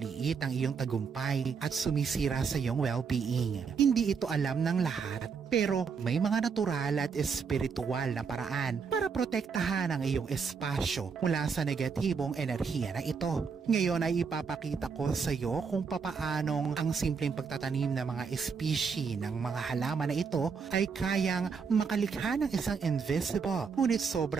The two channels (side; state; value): left; quieter; 5.8 dB